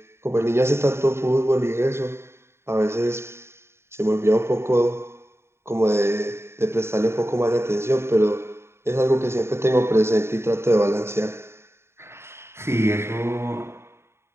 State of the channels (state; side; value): late; left; 0.12 ms